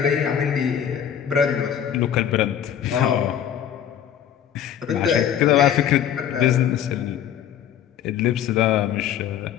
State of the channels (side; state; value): right; quieter; 9.6 dB